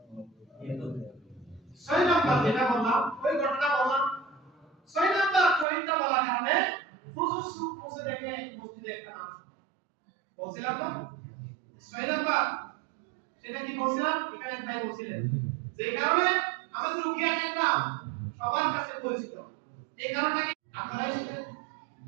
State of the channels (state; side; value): drops out; left; at 5.7 s